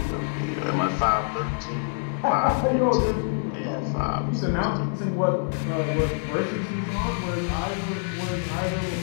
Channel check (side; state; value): right; silent; 59 dB below the other